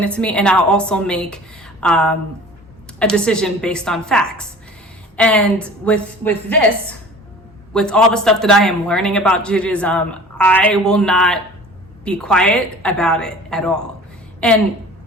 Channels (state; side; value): normal; both; correlation 0.43